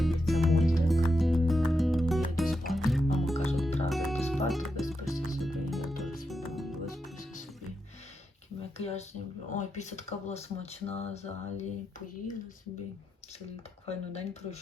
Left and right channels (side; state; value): both; normal; correlation 0.85